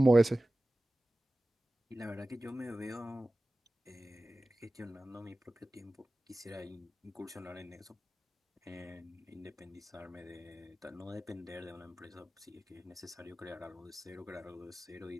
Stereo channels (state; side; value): normal; both; correlation 0.96